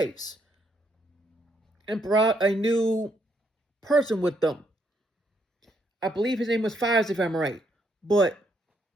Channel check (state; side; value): normal; both; correlation 0.74